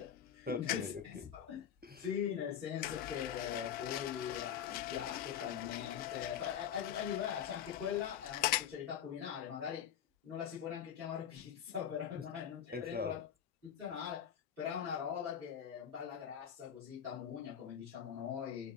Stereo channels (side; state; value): right; quieter; 9.1 dB